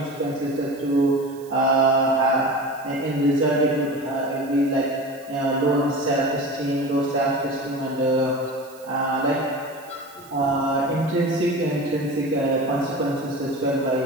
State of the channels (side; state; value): right; noise; hiss, 24 dB below the sound